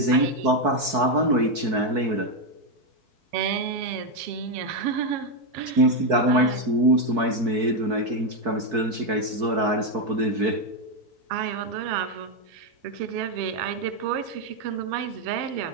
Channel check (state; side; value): late; left; 4.6 ms